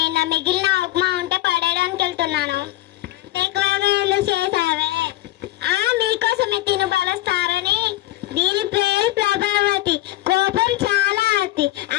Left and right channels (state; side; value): quieter; right; 16.6 dB